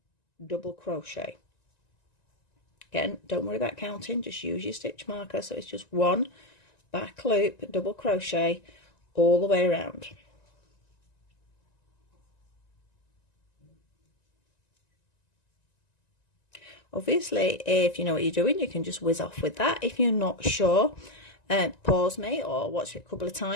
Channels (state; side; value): late; right; 1.9 ms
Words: double crochet. Again, don't worry about counting, just use your stitch marker. So it's just 1 back loop double crochet all the way around. Obviously, if you know what you're doing, you can just whiz off with that. If you're not sure, pause me or watch it a couple of